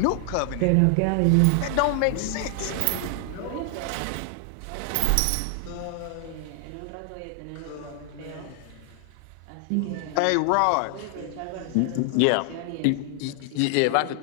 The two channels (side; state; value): both; different; correlation 0.00